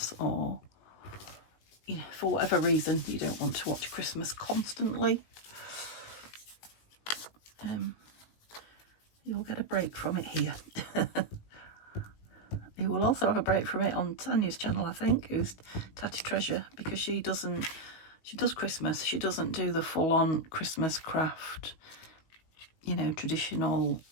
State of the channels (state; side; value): late; right; 18 ms